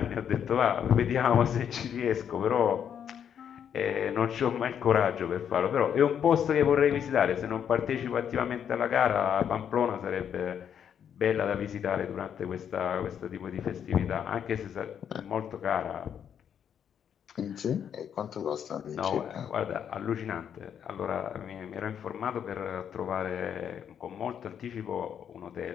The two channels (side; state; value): right; quieter; 8.5 dB